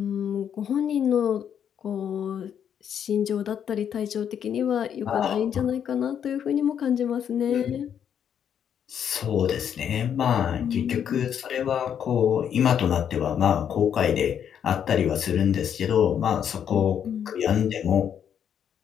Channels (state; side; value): quieter; right; 8.7 dB